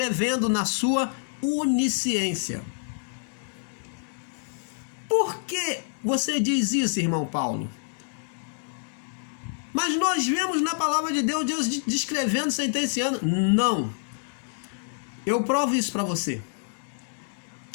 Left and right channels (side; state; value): right; silent; digital silence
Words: na sua onisciência. que você diz isso, irmão Paulo? Mas nós vemos na palavra de Deus, Deus descrevendo, sentenciando. Não. Eu provo isso para você.